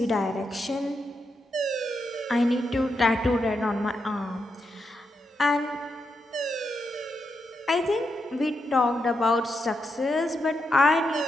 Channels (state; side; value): normal; both; correlation 0.84